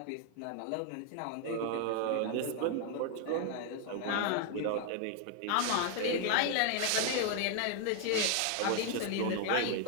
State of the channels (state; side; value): different; both; correlation 0.00